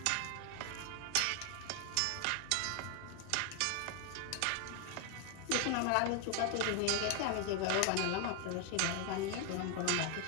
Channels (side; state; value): both; different; correlation 0.00